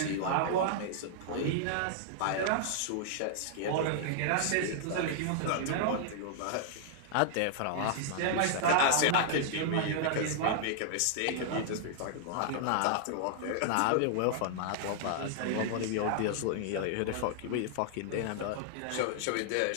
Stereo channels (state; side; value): different; both; correlation -0.01